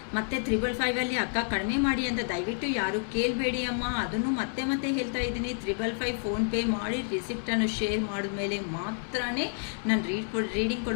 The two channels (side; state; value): right; silent; 58 dB below the other